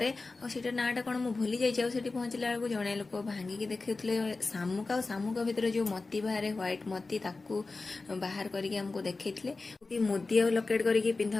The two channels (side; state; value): right; quieter; 3.7 dB